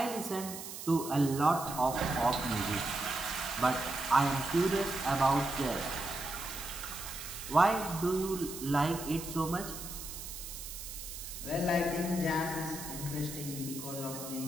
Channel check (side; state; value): right; noise; hiss, 9 dB below the sound